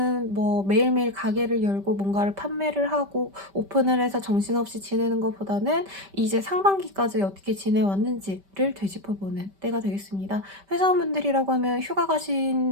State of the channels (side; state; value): left; late; 5.1 ms